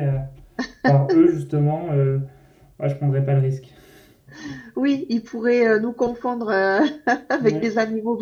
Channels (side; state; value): both; identical; correlation 1.00